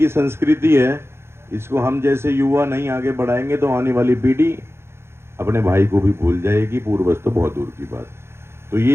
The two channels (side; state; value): left; late; 0.12 ms